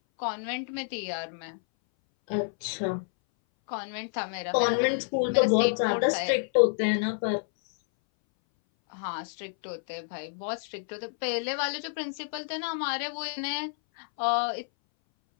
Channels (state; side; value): silent; right; 59 dB below the other